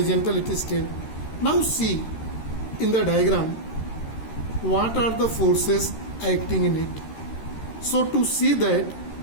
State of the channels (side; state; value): right; late; 13 ms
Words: it is still. Now see in the diagram what are the forces acting in it. So to see that,